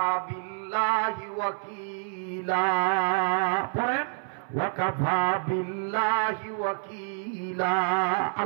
বিল্লাহি ওয়াকিলা। পড়েন, ওয়াকাফা বিল্লাহি ওয়াকিলা।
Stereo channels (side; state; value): left; silent; 59 dB below the other